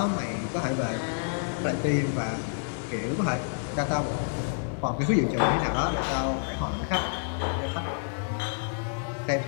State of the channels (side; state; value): right; silent; digital silence